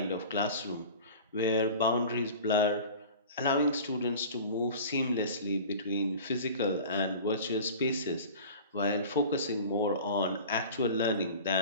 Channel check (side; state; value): both; inverted; correlation -0.38